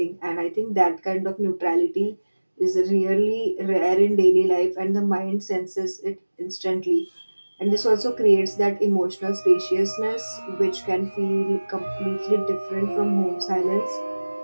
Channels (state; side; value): inverted; both; correlation -1.00